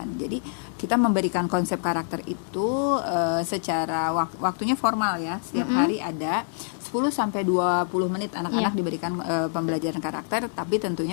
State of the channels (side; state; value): right; silent; 61 dB below the other